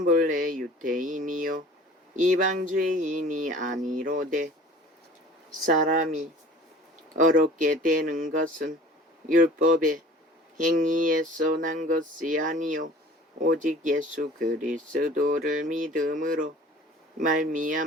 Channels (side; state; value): both; normal; correlation 0.46